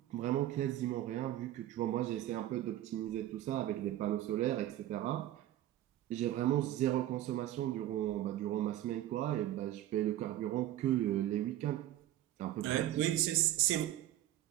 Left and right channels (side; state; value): left; quieter; 13.5 dB